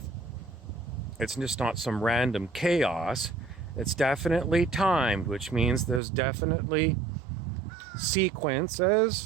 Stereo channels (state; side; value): drops out; left; at 6.0 s